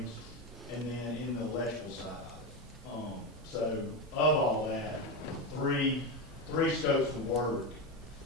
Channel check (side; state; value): both; normal; correlation 0.15